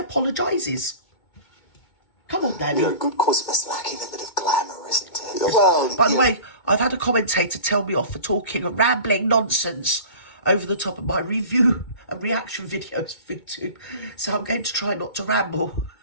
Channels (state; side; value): late; right; 2.2 ms